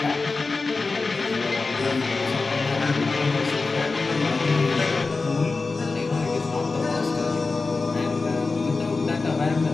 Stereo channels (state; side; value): quieter; right; 3.9 dB